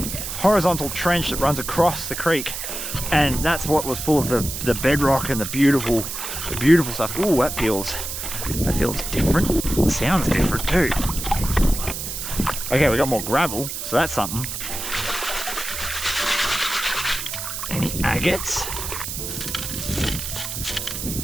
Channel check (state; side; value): noise; right; hiss, 6 dB below the sound